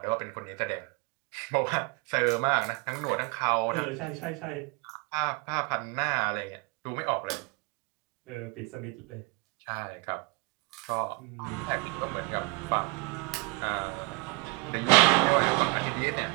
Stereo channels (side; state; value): left; quieter; 27.8 dB